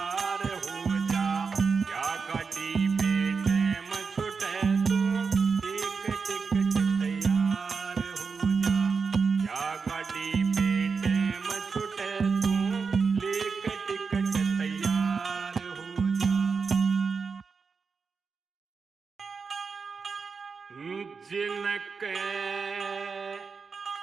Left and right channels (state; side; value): quieter; left; 5.2 dB